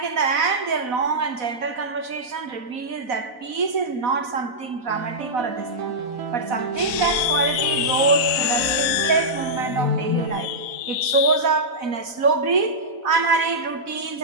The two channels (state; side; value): late; left; 4.0 ms